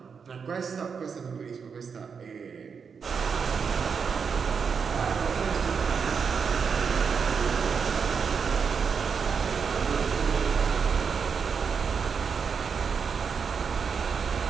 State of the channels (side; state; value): left; quieter; 6.1 dB